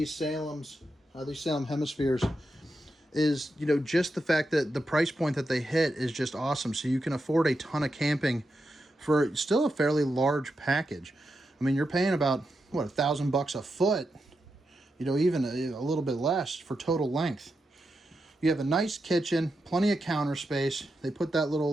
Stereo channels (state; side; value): normal; both; correlation 0.87